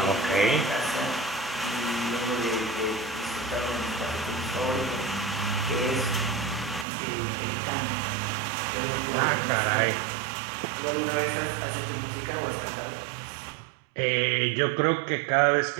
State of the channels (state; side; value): drops out; left; at 6.9 s